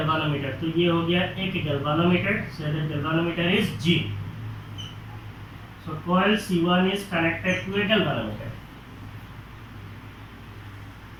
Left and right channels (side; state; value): both; identical; correlation 1.00